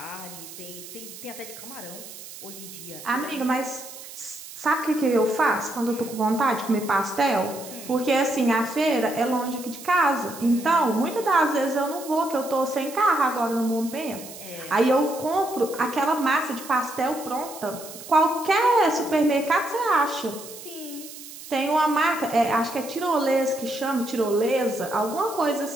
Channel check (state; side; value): noise; right; hiss, 14 dB below the sound